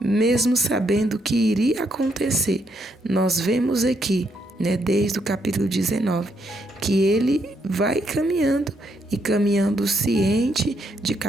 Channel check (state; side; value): normal; both; correlation 0.75